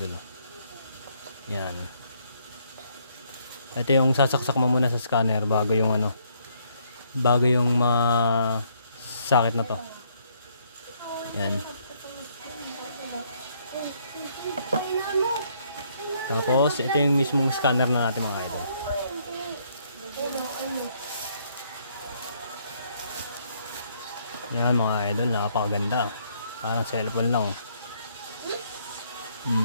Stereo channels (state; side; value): inverted; both; correlation -0.69